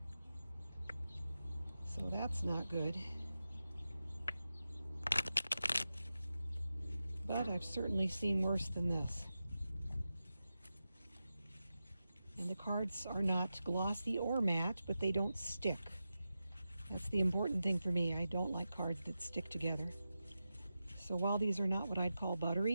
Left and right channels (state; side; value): inverted; both; correlation -0.92